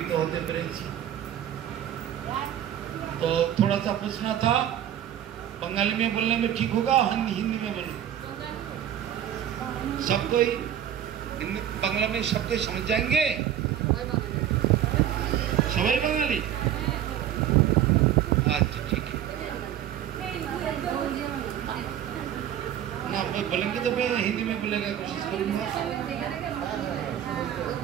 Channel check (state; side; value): quieter; left; 10.6 dB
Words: होते পেরেছি। तो थोड़ा सा पूछना था, बंगाली में बोलने में ठीक होगा, हिंदी में बोलूं? सब कोई बांग्ला में सबको समझ जाएंगे? सबाई बंगाली? अच्छा ठीक है। ना बोलेंगे तो मैं हिंदी में बोलेगा, कोशिश करूंगा।